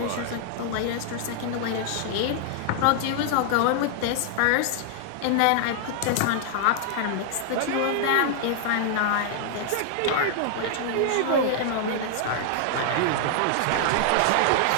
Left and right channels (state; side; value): different; both; correlation -0.01